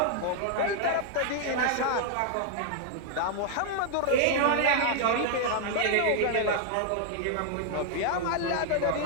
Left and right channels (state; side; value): different; both; correlation 0.00